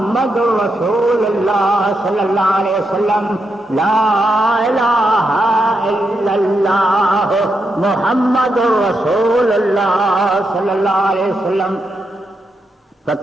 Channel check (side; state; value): both; normal; correlation 0.83